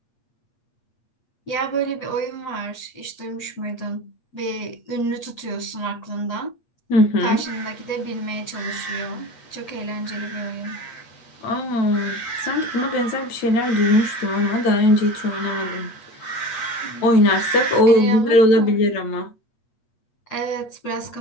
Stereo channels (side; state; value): right; late; 8.4 ms